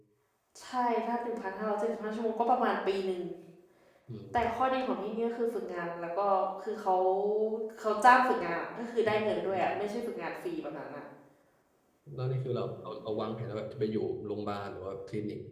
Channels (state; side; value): identical; both; correlation 1.00